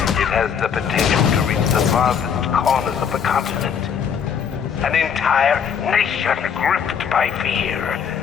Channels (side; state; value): right; quieter; 7.4 dB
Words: has the potential to reach the farthest corners of the continent. An entire nation gripped by fear.